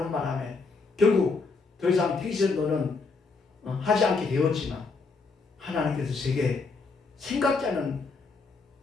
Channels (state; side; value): quieter; right; 4.3 dB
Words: 바람에 결국 더 이상 택시운전은 하지 않게 되었지만 하나님께서 제게 생각지 않은